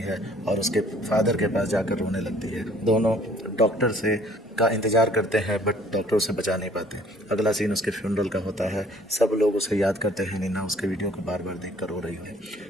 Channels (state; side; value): normal; both; correlation 0.57